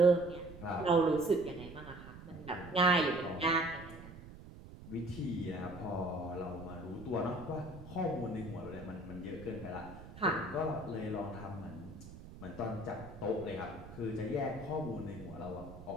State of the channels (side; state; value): right; noise; rumble, 15 dB below the sound